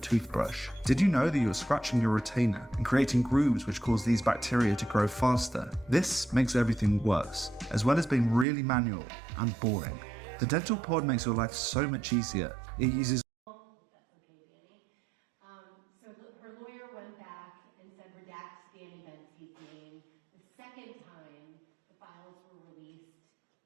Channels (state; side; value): drops out; left; at 8.5 s